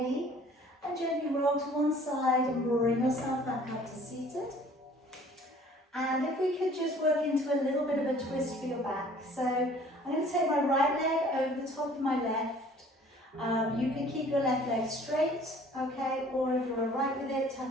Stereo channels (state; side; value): normal; both; correlation 0.53